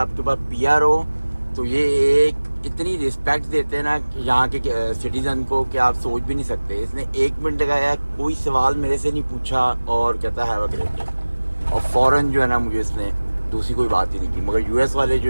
पास पीआर हो, तो ये एक इतनी रिस्पेक्ट देते हैं ना यहाँ के सिटीज़न को कि आप सोच भी नहीं सकते। इसने 1 मिनट लगाया, कोई सवाल मेरे से नहीं पूछा और कहता है हैव अ ग्रेट डे, और फ़ौरन जो है ना मुझे इसने दूसरी कोई बात ही नहीं की। मगर यूएस वाले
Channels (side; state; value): both; inverted; correlation -1.00